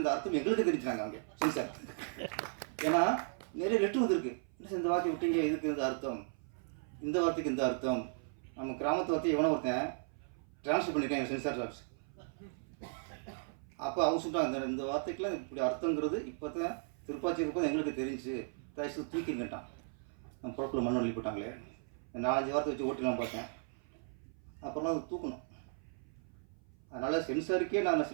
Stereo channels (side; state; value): left; silent; 54 dB below the other